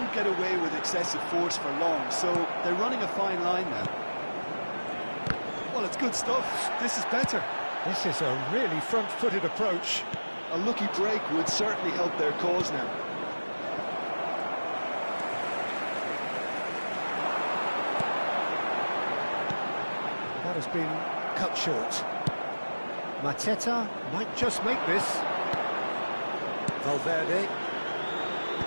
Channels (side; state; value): both; inverted; correlation -1.00